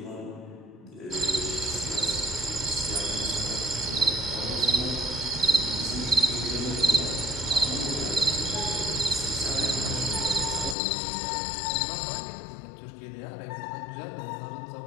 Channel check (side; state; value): right; drops out; at 10.8 s